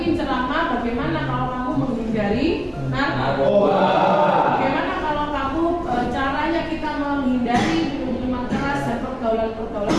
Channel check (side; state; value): both; identical; correlation 1.00